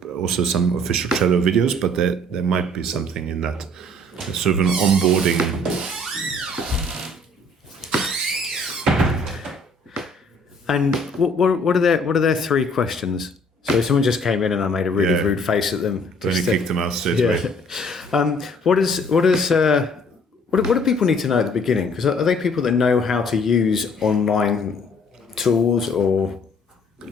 also some official Trello videos, but there might be something in that. It's sort of an onboarding. And what are their 3 questions? So if someone just came in and I made a really rude face at them, Then you kicked them out straight away. What do people need to know at the beginning? Because are they people that know how to use online tools or?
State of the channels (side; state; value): both; normal; correlation 0.58